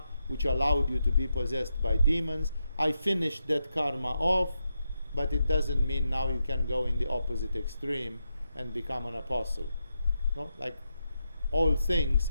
which allowed you to be possessed by demons. I finished that karma off, but it doesn't mean now you can go in the opposite extreme and become an apostle. No? Like, all things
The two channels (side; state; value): both; inverted; correlation -0.85